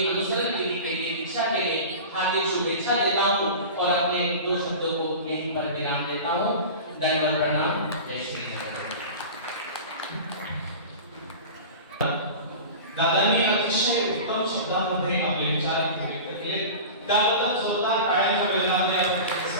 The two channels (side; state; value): both; inverted; correlation -0.33